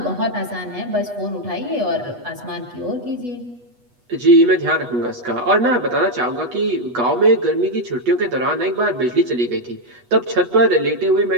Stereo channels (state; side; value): late; left; 8.2 ms